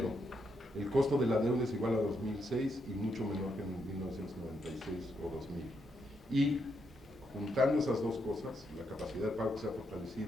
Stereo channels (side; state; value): both; normal; correlation 0.79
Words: el costo de la deuda es igual a 2006 y mucho menor que en 1996 o 2000. Y juntando esas dos cosas, la capacidad de pago que se ha